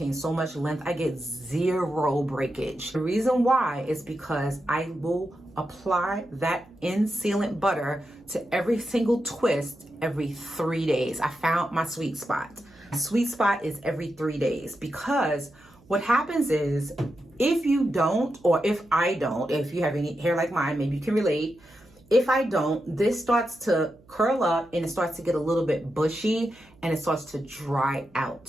so much length, I get zero breakage. The reason why is because I will apply that sealant butter to every single twist every 3 days. I found my sweet spot. My sweet spot is every 3 days, because what happens is if you don't, or if I don't, if you have any hair like mine, maybe you can relate. If I don't, this starts to curl up and it starts to get a little bit bushy and it starts to dry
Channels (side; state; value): right; noise; hum, 28 dB below the sound